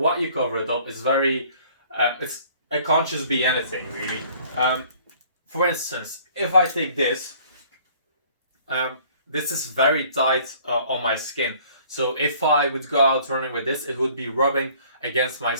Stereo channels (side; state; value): both; inverted; correlation -0.55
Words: you cover it up is very, it can't just be anything, really. For instance, if I take this, this is very tight on my skin. So if I would go out running with this, it would be rubbing against my